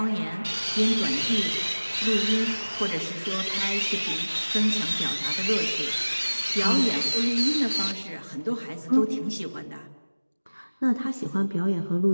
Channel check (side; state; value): both; inverted; correlation -1.00